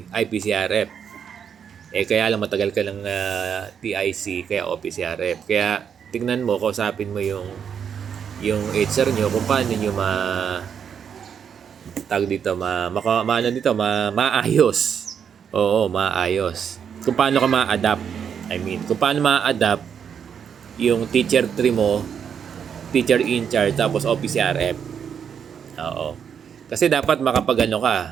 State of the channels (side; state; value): left; quieter; 7.6 dB